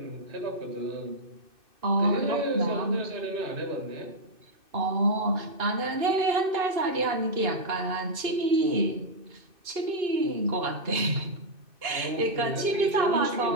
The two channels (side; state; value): left; late; 2.6 ms